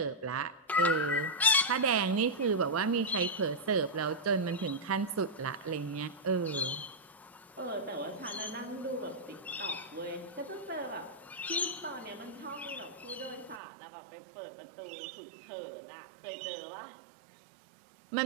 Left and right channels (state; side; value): drops out; left; at 13.6 s